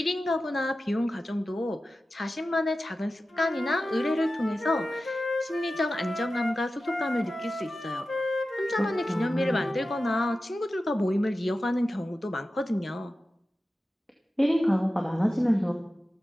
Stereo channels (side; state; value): both; normal; correlation 0.94